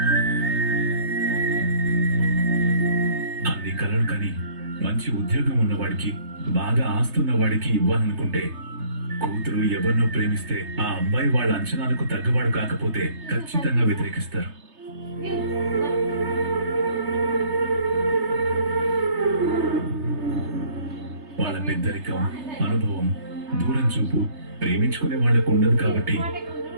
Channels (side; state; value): left; late; 3.3 ms